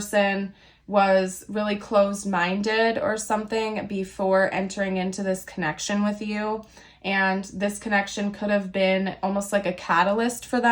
was really closed-minded or something before entering into this connection with you. And this connection could have been almost like a catalyst for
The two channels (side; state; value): both; identical; correlation 1.00